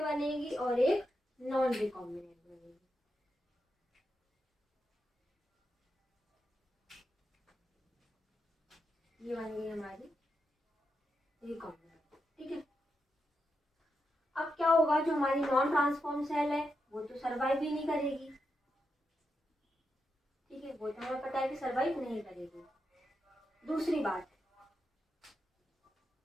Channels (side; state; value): both; normal; correlation 0.86